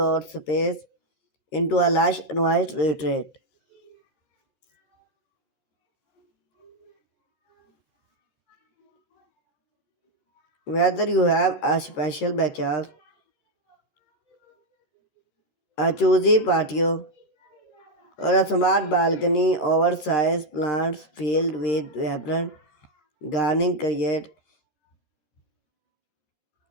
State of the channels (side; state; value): right; late; 13 ms